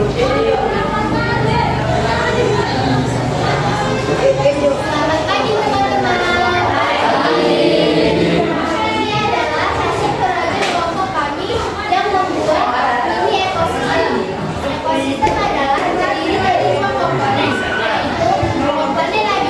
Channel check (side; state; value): both; identical; correlation 1.00